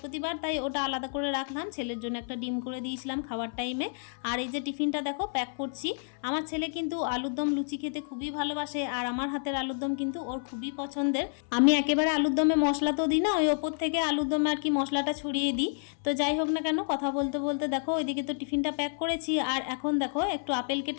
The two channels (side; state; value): right; silent; 58 dB below the other